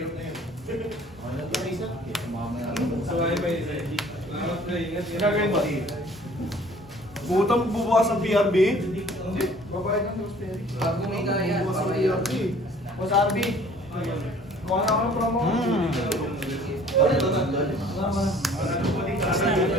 Butang bubukas ng PRB? Babayad ng Rosemary. Pag kumita yan, Bubukas ng papaya. PRB. Boss RB. Kuha na ako ng promo.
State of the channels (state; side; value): normal; both; correlation 0.52